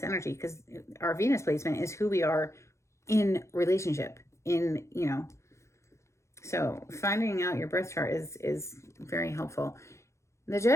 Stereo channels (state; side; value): late; right; 0.14 ms